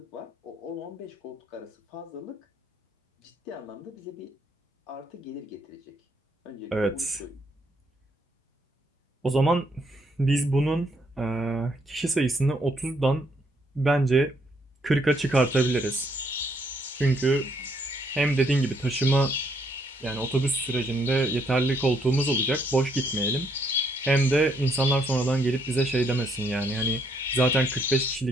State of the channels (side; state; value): both; normal; correlation 0.71